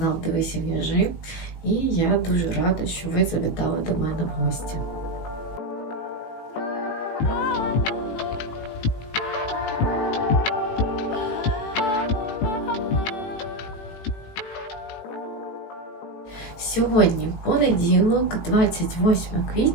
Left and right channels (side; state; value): right; late; 18 ms